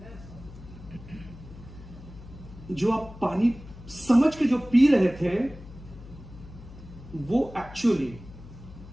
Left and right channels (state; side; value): noise; left; hum, 16 dB below the sound